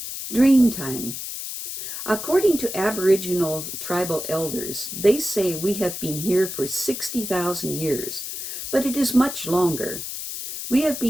Dreamtime. According to Aboriginal tribal elders, they say we have been here for 60,000 years, but it is much longer. We have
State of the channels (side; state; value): left; noise; hiss, 7 dB below the sound